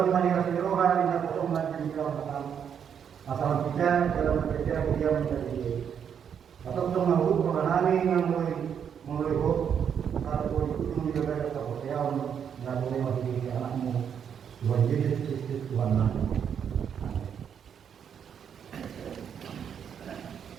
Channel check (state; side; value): quieter; left; 8.0 dB